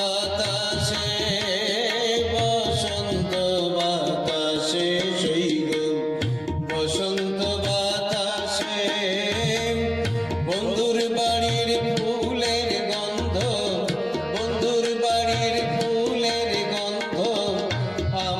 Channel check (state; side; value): noise; right; hum, 29 dB below the sound